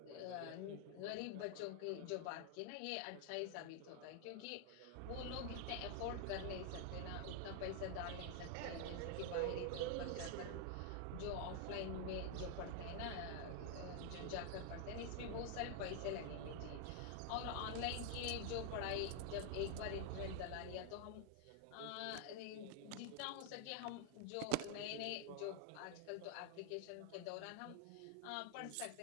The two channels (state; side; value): different; both; correlation 0.00